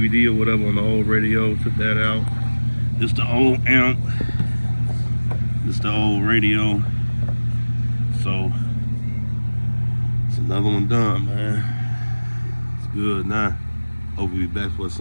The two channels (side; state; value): both; inverted; correlation -1.00